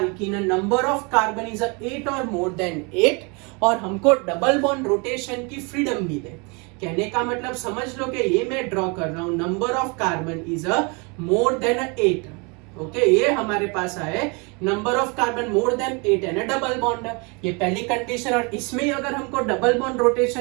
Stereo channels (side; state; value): left; quieter; 31.2 dB